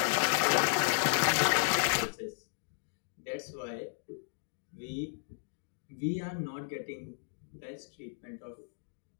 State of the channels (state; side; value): silent; right; digital silence